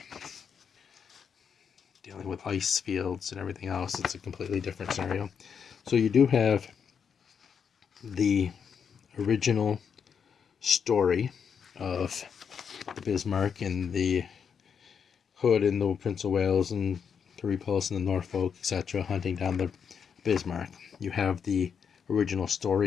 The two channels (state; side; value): quieter; right; 7.0 dB